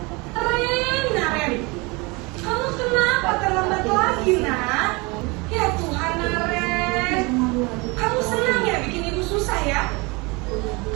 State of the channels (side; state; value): left; quieter; 26.7 dB